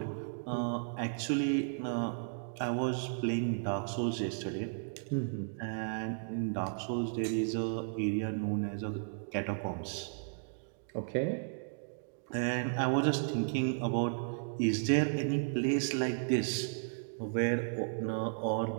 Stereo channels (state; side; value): silent; left; digital silence